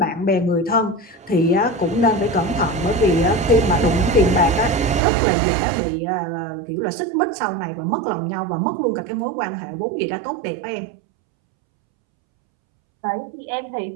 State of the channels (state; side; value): drops out; left; at 5.0 s